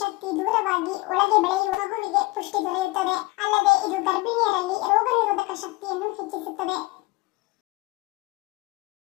ದೂರವಾಗಿ ಒಳಗೆ ಬೆಳೆಯುವ ಮಗುವಿಗೆ ಪುಷ್ಟಿ ದೊರೆಯುತ್ತದೆ. ಅಲ್ಲದೆ ಇದು ಗರ್ಭಿಣಿಯರಲ್ಲಿ ರೋಗ ನಿರೋಧಕ ಶಕ್ತಿಯನ್ನು ಹೆಚ್ಚಿಸುತ್ತದೆ.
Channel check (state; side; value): quieter; right; 21.9 dB